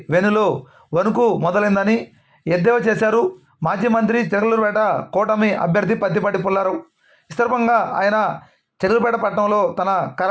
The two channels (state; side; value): identical; both; correlation 1.00